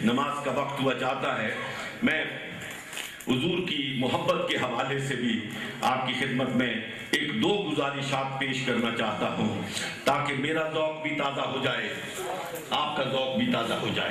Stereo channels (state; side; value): identical; both; correlation 1.00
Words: نماز کا وقت ہوا جاتا ہے. میں حضور کی محبت کے حوالے سے بھی آپ کی خدمت میں ایک دو گزارشات پیش کرنا چاہتا ہوں, تاکہ میرا ذوق بھی تازہ ہو جائے, آپ کا ذوق بھی تازہ ہو